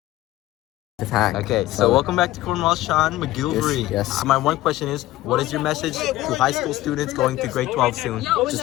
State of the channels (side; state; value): right; quieter; 16.3 dB